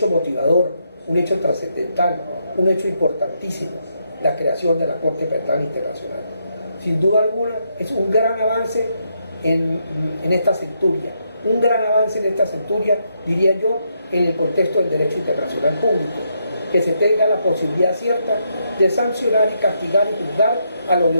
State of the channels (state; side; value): inverted; both; correlation -0.78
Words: motivador, un hecho trascendental, un hecho importantísimo, la creación de la Corte Penal Internacional. Sin duda alguna, es un gran avance en esta centuria, un gran avance en esta centuria, diría yo, en el contexto del derecho internacional público, que se tenga la posibilidad cierta de sancionar y castigar y juzgar a los